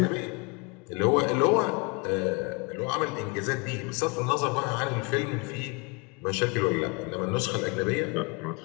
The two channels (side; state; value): right; quieter; 30.0 dB